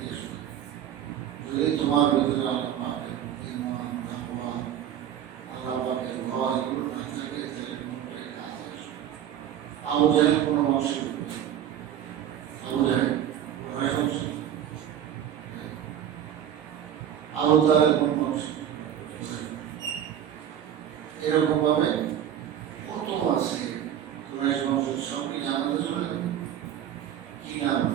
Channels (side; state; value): left; quieter; 10.2 dB